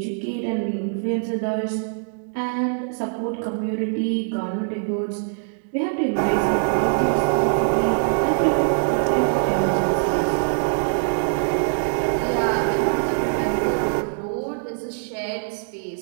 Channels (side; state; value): left; silent; digital silence